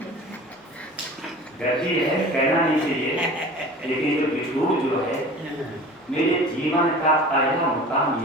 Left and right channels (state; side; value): normal; both; correlation 0.41